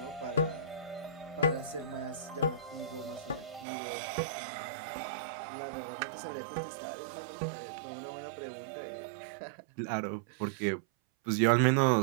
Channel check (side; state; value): left; drops out; at 3.7 s